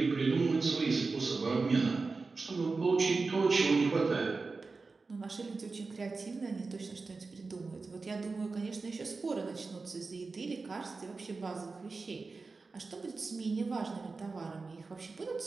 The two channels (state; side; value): quieter; left; 4.1 dB